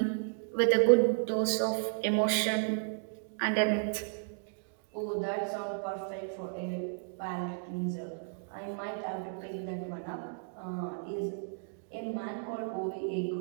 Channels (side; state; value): left; silent; digital silence